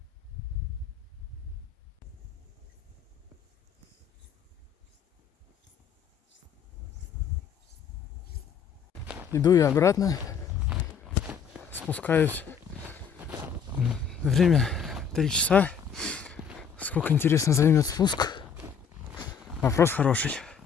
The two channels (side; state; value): right; quieter; 6.8 dB